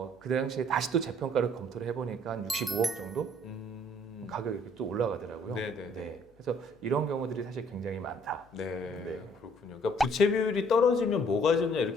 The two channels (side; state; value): left; noise; hum, 30 dB below the sound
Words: 그 당시에 다시 또 재평가를 검토를 해보니까 한 65억 정도 가격이 이렇게 또 올라가더라고요. 네네. 네. 그래서 이런 경우들이 사실 굉장히 많다. 네, 네. 그렇군요. 그러니까 부채 비율이 떨어지면 뭐가 좋냐